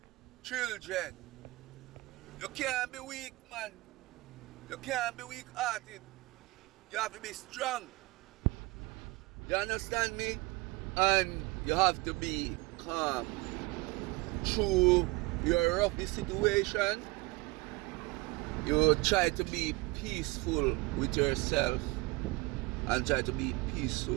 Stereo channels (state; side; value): quieter; left; 23.2 dB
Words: children? You can't be weak, man. You can't be weak-hearted. You have to be strong. You understand me? And you have to be calm. Through your rough situation, you try to be peaceful with yourself and try to be